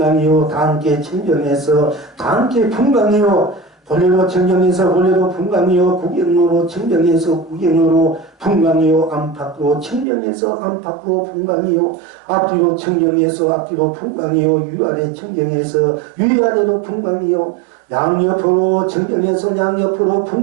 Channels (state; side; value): drops out; left; at 10.1 s